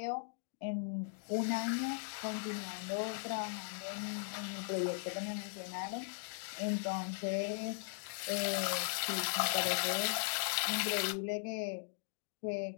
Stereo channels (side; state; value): right; silent; digital silence